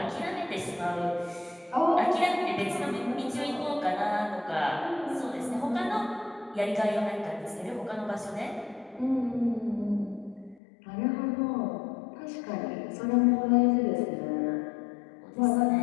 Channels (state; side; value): drops out; right; at 10.6 s